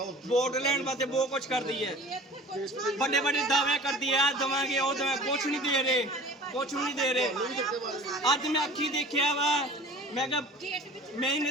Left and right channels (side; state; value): both; normal; correlation 0.43